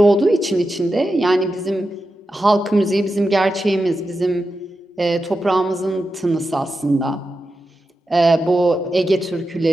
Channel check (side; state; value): both; normal; correlation 0.90